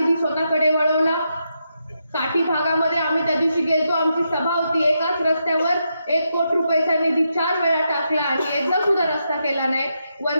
स्वतःकडे वळवला। काठी भागामध्ये आम्ही त्या दिवशी गेलतो, आमची सभा होती, एकाच रस्त्यावर 1 कोटी रुपयाचा निधी 4 वेळा टाकला आणि एकदा सुद्धा रस्ता केला नाही।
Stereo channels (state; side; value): inverted; both; correlation -0.83